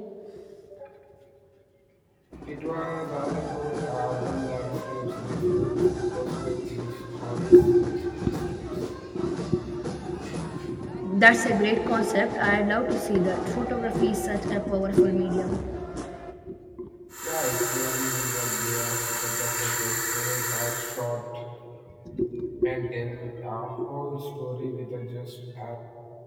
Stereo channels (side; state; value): both; identical; correlation 1.00